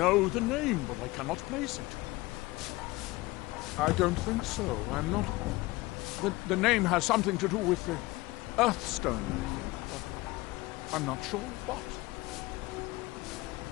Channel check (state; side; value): quieter; right; 20.8 dB